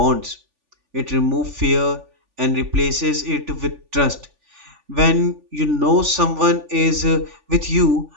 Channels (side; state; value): left; late; 3.4 ms